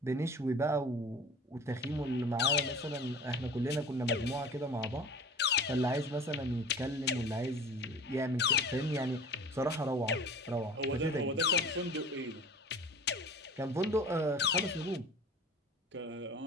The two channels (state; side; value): normal; both; correlation 0.41